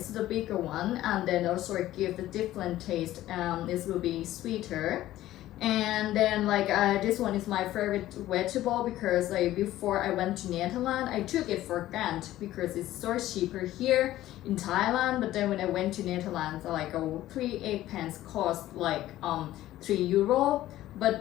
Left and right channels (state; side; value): quieter; right; 14.5 dB